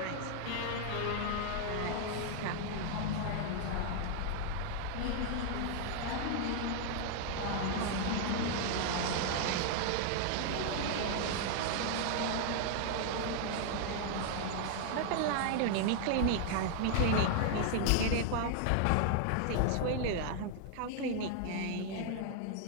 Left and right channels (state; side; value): different; both; correlation 0.00